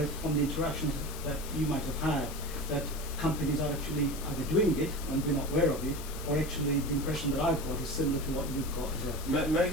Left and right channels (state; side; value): noise; left; hiss, 12 dB below the sound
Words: from the interactions that you might have had, that companies are actually either doing it and we're not aware of it, or actually the impression that I've got is similar to what you've got as well.